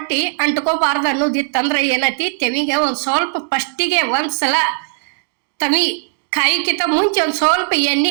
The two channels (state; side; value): silent; left; digital silence